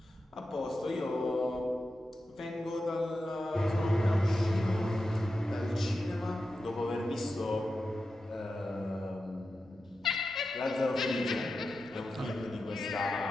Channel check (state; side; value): normal; both; correlation 0.91